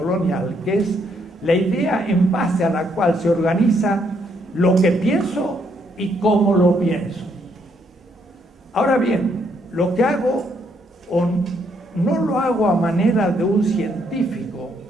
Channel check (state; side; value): normal; both; correlation 0.72